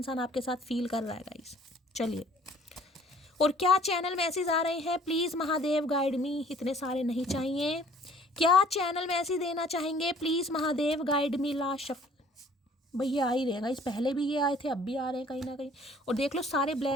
आपके साथ फील कर रहा है गाइस। चलिए, और क्या चैनल मैसेज आ रहे हैं, प्लीज़ महादेव गाइड मी। इतने सारे नहीं चाहिए। क्या चैनल मैसेज देना चाहेंगे, please Mahadev guide me. Last shuffle भैया आ ही रहेगा, इस पहले भी ये आए थे, अब भी आ रहे हैं कहीं ना कहीं। और देख लो सारे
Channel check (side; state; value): both; normal; correlation 0.55